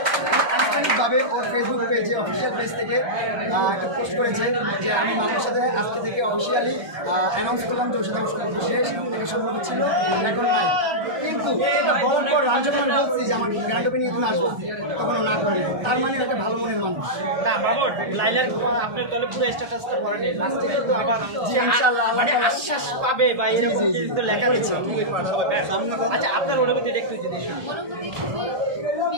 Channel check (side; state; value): left; late; 1.2 ms